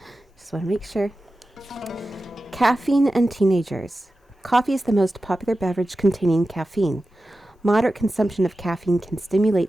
Just want to make sure. Caffeine and teenagers. Coffee is the most popular beverage containing caffeine. Moderate consumption of caffeine can stimulate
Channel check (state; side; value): normal; both; correlation 0.94